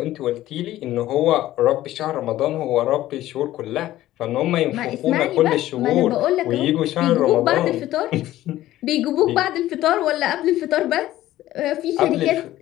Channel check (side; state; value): right; quieter; 14.7 dB